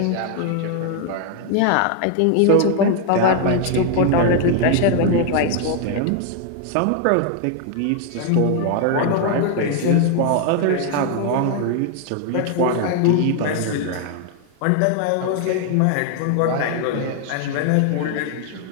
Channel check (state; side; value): different; both; correlation 0.00